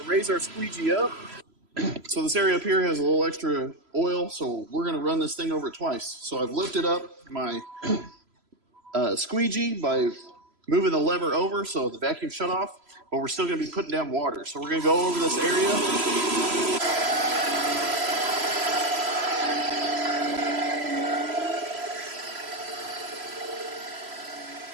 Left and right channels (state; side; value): late; left; 3.0 ms